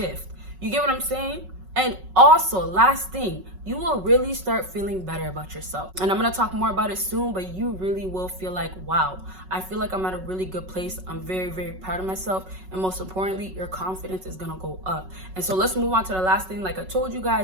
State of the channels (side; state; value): left; late; 5.4 ms